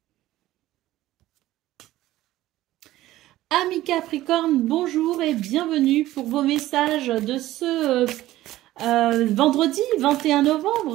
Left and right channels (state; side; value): quieter; left; 15.5 dB